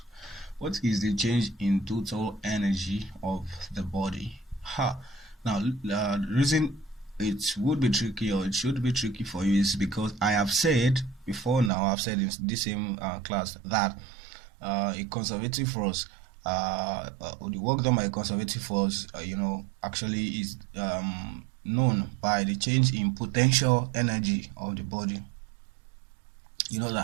What is the change in total energy of the body? Now, the reason it would be tricky or it should be tricky for you is because I have said before now, I've said in this same class that a conservative force, the work done by a conservative force, actually is known by the change in potential energy of the body. You know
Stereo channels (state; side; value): drops out; left; at 11.7 s